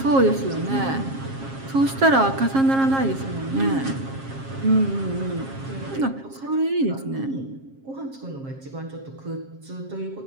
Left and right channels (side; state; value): left; late; 7.4 ms